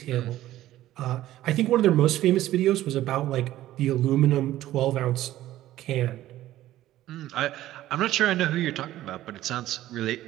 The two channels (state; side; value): quieter; left; 14.3 dB